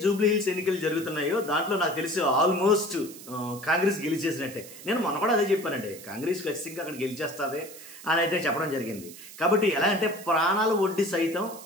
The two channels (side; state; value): right; noise; hiss, 16 dB below the sound